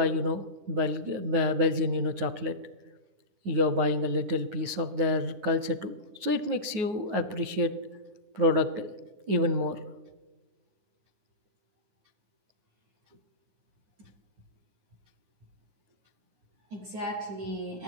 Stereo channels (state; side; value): late; left; 9.5 ms